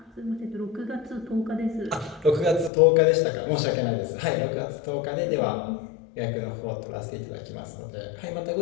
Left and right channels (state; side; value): drops out; right; at 2.7 s